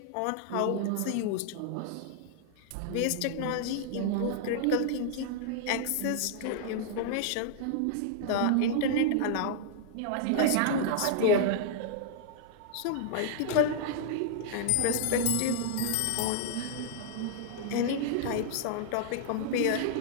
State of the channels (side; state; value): both; different; correlation -0.01